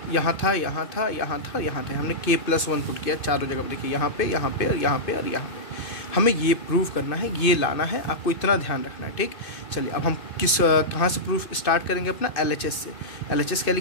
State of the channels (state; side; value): late; right; 2.6 ms